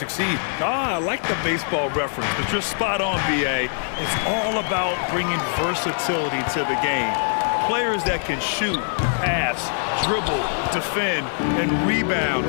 I like the baseball reference, but you're spot on, BA. It's all about bringing versatility to the game. Players that can shoot, pass, dribble, defend, and rebound.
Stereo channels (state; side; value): silent; right; digital silence